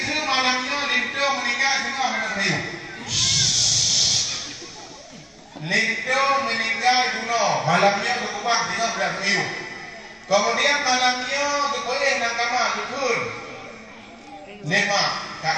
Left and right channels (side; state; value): both; identical; correlation 1.00